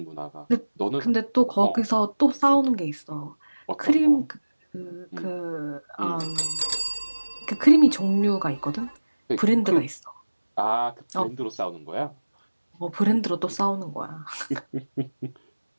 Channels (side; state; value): both; inverted; correlation -1.00